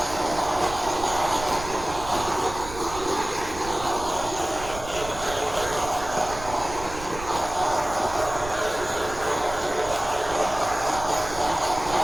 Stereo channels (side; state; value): right; noise; rumble, 12 dB below the sound